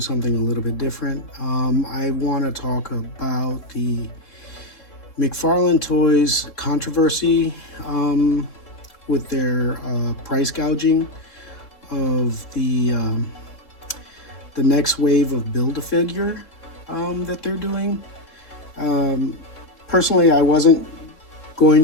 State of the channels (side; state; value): right; late; 3.7 ms